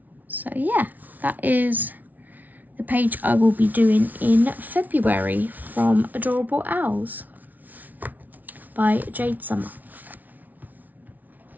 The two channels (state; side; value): late; left; 0.078 ms